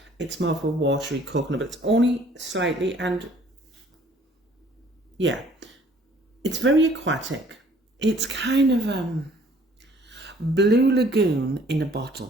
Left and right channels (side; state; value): both; normal; correlation 0.57